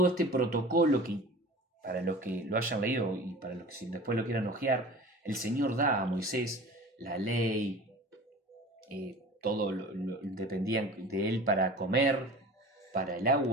este protocolo que, para los que lo hayan leído y para los que si después lo quieran hojear, el Señor da a Moisés la ley, todo dependía de él para comer, para el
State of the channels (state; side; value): normal; both; correlation 0.39